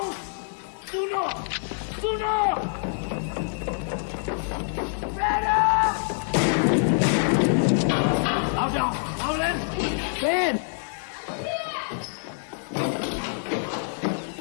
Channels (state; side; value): silent; right; 59 dB below the other